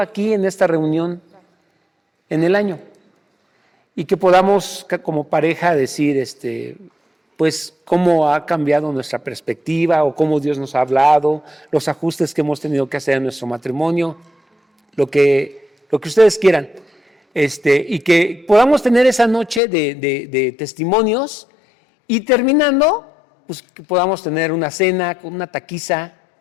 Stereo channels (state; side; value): drops out; right; at 19.6 s